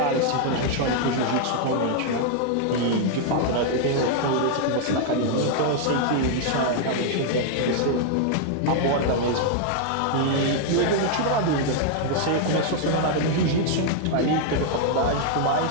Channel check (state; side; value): different; both; correlation -0.01